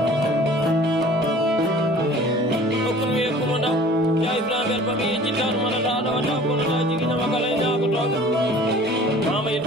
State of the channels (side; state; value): both; normal; correlation 0.47